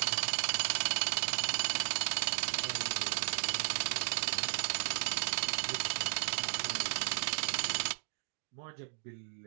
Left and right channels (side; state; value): left; silent; digital silence